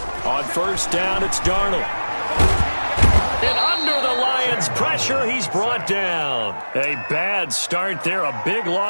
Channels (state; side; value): inverted; both; correlation -1.00